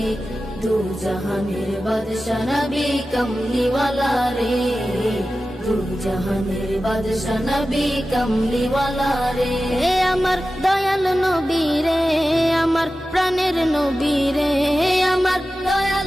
দু জাহানের বাদশা নবী কমলিওয়ালা রে, দু জাহানের বাদশা নবী কমলিওয়ালা রে। আমার দয়াল নবী রে, আমার প্রাণের নবী রে, আমার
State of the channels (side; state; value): both; normal; correlation 0.94